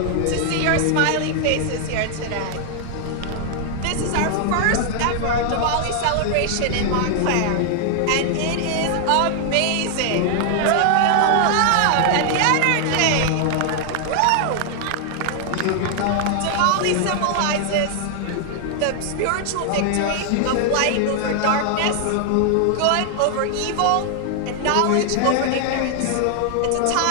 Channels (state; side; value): different; both; correlation 0.00